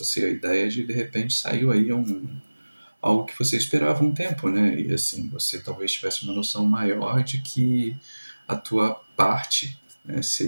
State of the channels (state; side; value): inverted; both; correlation -1.00